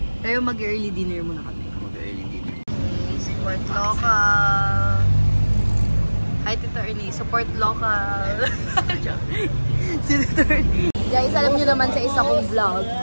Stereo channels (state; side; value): inverted; both; correlation -1.00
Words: Pero mag-early dinner muna kami. Mag-early dinner. Support local. Hi, Tito Ernie. Support local. Si Tito Ernie. Guys, alam niyo naman sa isa kong vlog